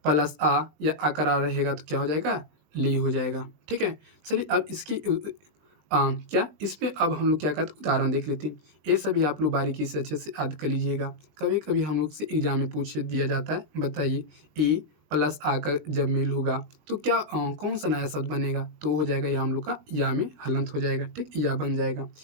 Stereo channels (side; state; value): left; late; 20 ms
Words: प्लस आ या आकर आ रहेगा तो क्या हो जाएगा? ले हो जाएगा। ठीक है, चलिए अब इसकी क्या इस पे अब हम लोग क्या करते हैं? उदाहरण देख लेते हैं। ये सभी आप लोग बारीकी से अच्छे से याद कर लीजिएगा। कभी कभी हम लोग से एग्जाम में पूछ दिया जाता है, बताइए ए प्लस आ का जब मेल होगा तो क्या कौन सा नया शब्द बनेगा? तो हो जाएगा या हम लोग का या में हलंत हो जाएगा। ठीक, या बन जाएगा।